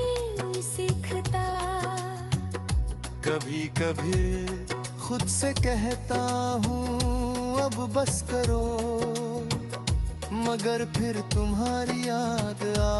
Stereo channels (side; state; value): both; identical; correlation 1.00